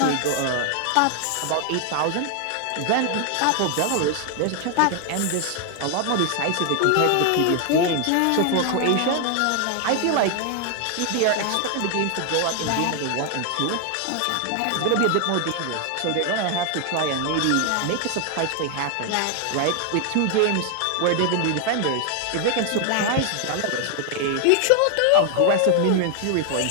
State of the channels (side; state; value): both; different; correlation 0.00